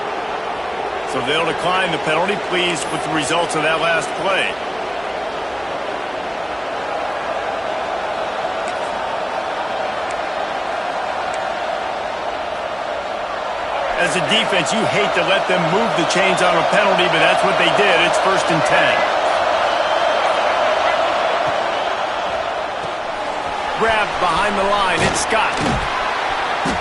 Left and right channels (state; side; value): identical; both; correlation 1.00